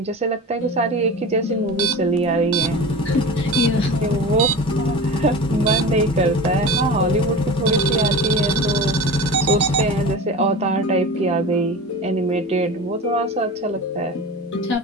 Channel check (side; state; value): both; normal; correlation 0.32